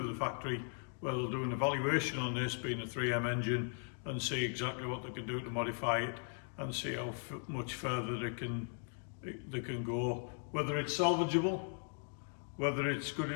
the factory where they'll do an evaluation on this being a 3M engine and see exactly what they can do to modify it and see how much further they can go, whether it's salvageable, whether it's good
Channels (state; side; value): silent; right; 52 dB below the other